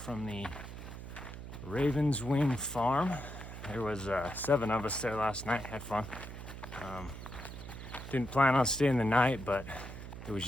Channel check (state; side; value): noise; right; hum, 10 dB below the sound